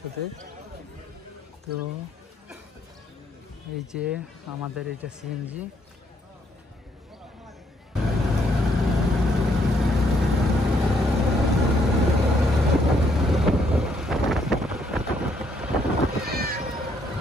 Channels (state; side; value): normal; both; correlation 0.71